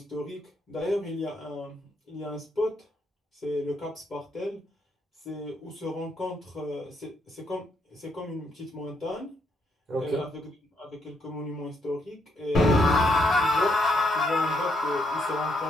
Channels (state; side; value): normal; both; correlation 0.75